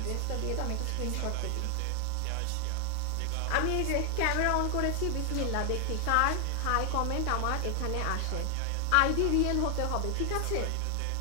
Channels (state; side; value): different; both; correlation 0.00